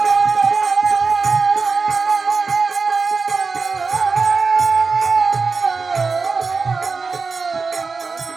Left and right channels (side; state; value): left; quieter; 4.6 dB